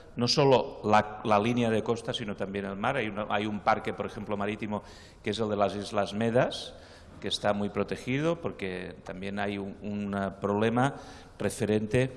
no solo la línea de costa, sino también el mar. Hay un parque, por ejemplo, marítimo, que es el de las Islas Medas, que está muy protegido porque también hay un problema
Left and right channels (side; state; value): both; identical; correlation 1.00